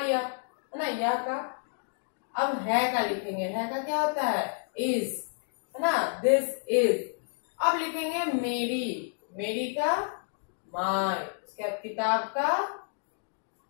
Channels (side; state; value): right; silent; digital silence